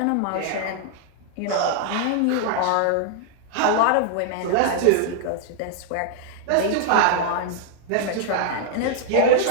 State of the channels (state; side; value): different; both; correlation -0.01